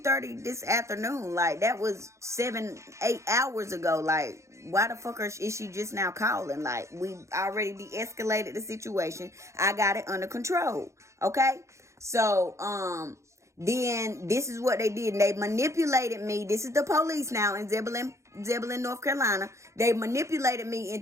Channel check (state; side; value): late; left; 0.14 ms